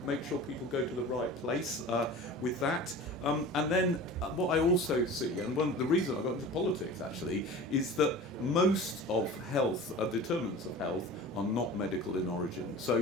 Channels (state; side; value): normal; both; correlation 0.37